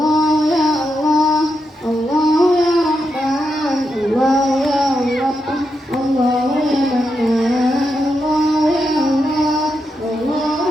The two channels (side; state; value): both; normal; correlation 0.85